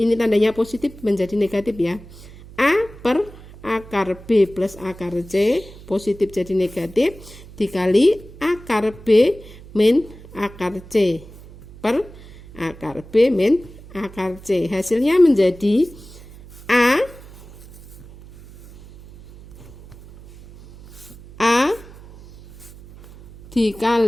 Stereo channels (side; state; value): right; noise; hum, 19 dB below the sound